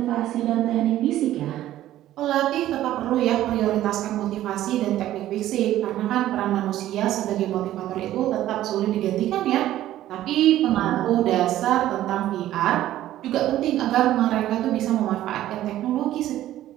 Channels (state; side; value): quieter; left; 13.6 dB